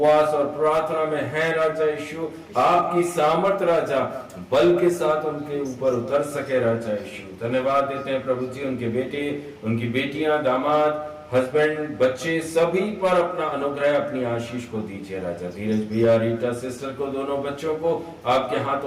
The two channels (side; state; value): both; identical; correlation 1.00